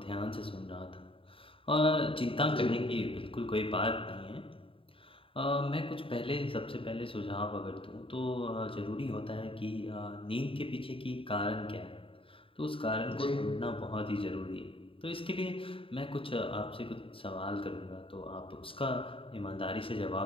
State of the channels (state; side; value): late; right; 0.26 ms